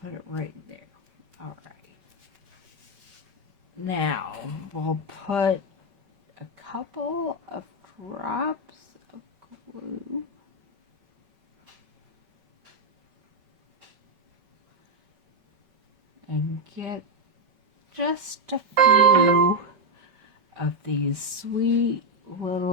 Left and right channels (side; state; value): left; late; 5.3 ms